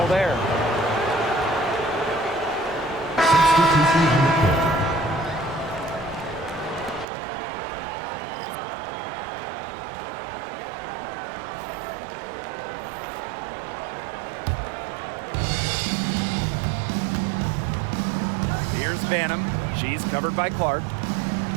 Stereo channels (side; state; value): left; drops out; at 7.1 s